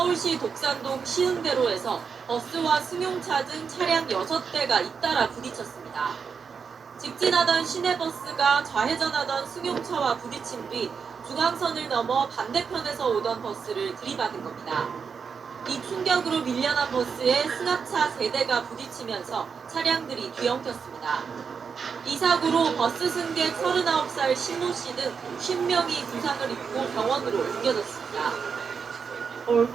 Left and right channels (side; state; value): left; quieter; 6.0 dB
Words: 독산동 시흥대로에서 버스와 승용차 등 차량 6대가 잇따라 부딪혔습니다. 직진하던 시내버스가 좌회전하던 승용차와 부딪힌 뒤 중앙선을 넘어 반대편에서 오던 버스를 들이받은 겁니다. 이 충격으로 밀려난 버스에 승합차 3대가 부딪히면서 차량들이 뒤엉켰습니다. 이 사고로 버스 승객 39살 신모 씨 등 50명이 부상을 입고 병원으로 옮겨졌습니다.